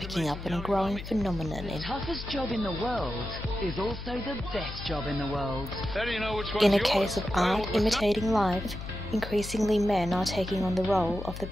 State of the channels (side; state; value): left; noise; hum, 9 dB below the sound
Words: up on a growing phenomenon The toughest job in the world is also the best job in the world. in a case of art imitating life. Increasingly men are taking on the role of the